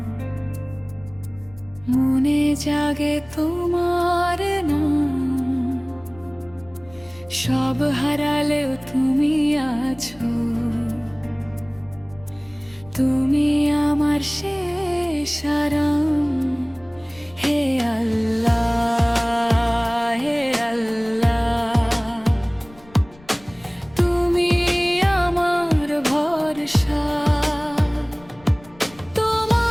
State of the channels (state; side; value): noise; left; rumble, 24 dB below the sound